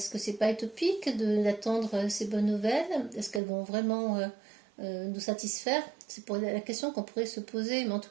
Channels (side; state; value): left; drops out; at 3.4 s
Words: que c'est pas utopique d'attendre ces bonnes nouvelles? Est-ce qu'elles vont vraiment nous satisfaire? C'est pour la question qu'on pourrait se poser. Mais en tout